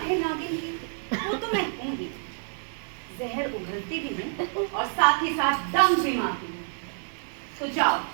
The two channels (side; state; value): left; silent; 60 dB below the other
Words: है नागिन की, वो तो मैं हूँ ही। जहर उगलती भी हूँ और साथ ही साथ दम भी मारती हूँ। तो जाओ,